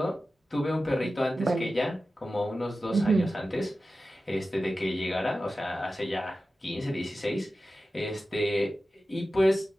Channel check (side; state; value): both; normal; correlation 0.94